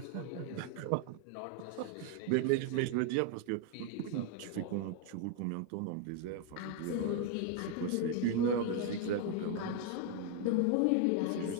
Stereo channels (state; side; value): different; both; correlation 0.01